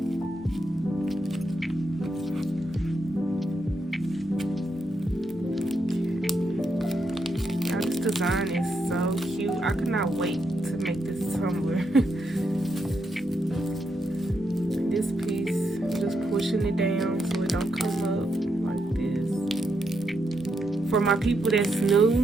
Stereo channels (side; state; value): both; normal; correlation 0.81